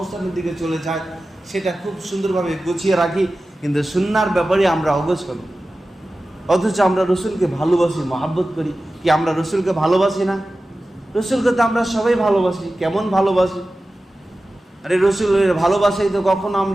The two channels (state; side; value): normal; both; correlation 0.95